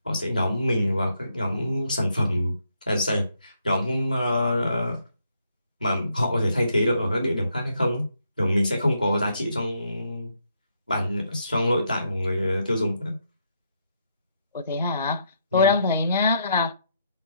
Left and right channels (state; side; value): inverted; both; correlation -0.76